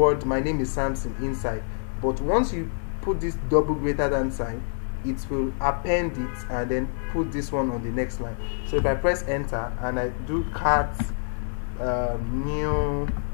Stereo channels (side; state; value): right; silent; digital silence